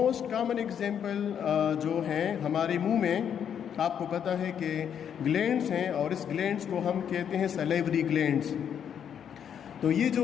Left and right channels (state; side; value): quieter; right; 8.5 dB